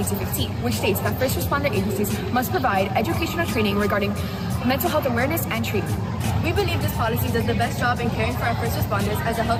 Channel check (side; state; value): both; identical; correlation 1.00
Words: which states that first responder agencies must provide educational training regarding mental health awareness and treatment. We believe this policy does the best job in caring for our first responders as a